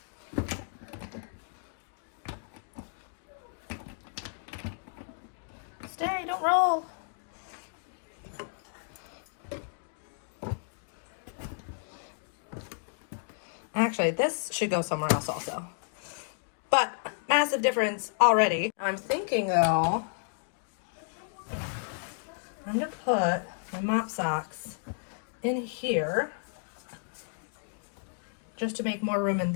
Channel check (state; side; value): silent; right; digital silence